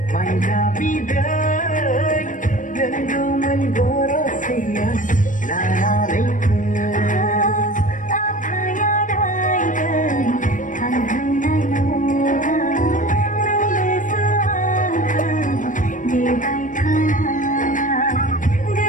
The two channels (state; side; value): late; right; 0.38 ms